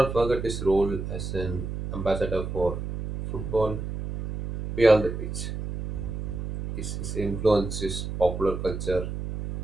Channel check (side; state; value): right; noise; hum, 6 dB below the sound